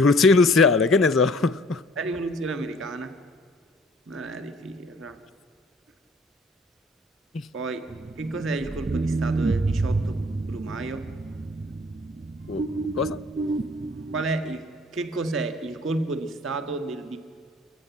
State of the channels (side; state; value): both; normal; correlation 0.55